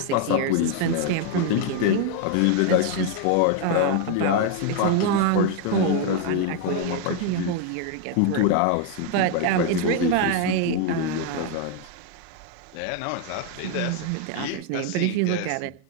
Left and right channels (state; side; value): different; both; correlation 0.00